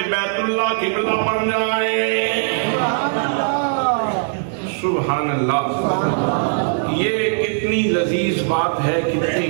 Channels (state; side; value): silent; left; 66 dB below the other